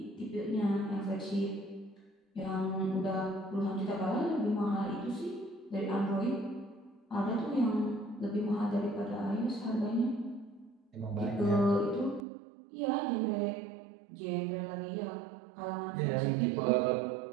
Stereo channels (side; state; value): left; drops out; at 12.2 s